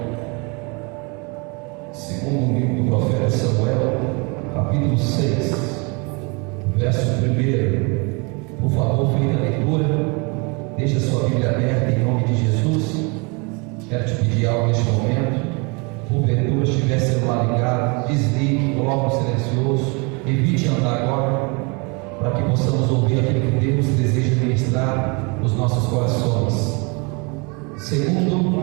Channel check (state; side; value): quieter; left; 30.9 dB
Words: segundo livro do profeta Samuel, capítulo 6, verso 1. Por favor, feita a leitura. Deixa a sua Bíblia aberta em nome de Jesus. Quero te pedir algo neste momento. Porventura, se tiver celular ligado, desligue, coloque no silencioso, evite andar agora, para que possamos ouvir aquilo que Deus deseja ministrar nos nossos corações.